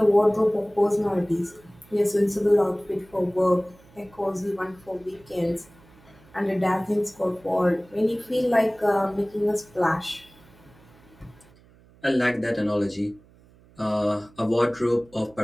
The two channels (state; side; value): noise; right; hum, 27 dB below the sound